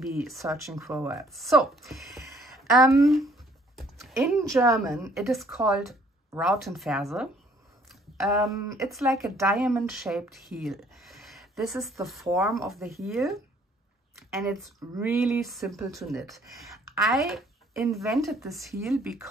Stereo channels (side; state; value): both; normal; correlation 0.61